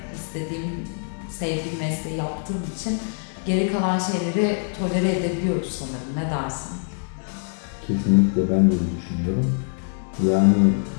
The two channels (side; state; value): right; silent; 63 dB below the other